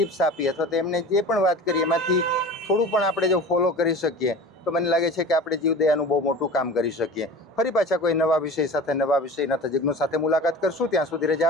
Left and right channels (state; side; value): normal; both; correlation 0.37